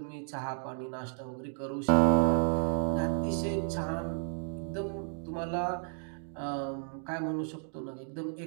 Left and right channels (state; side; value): silent; left; 56 dB below the other